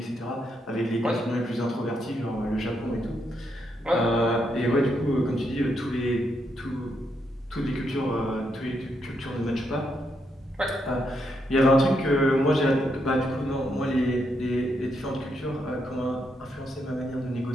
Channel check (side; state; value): both; normal; correlation 0.79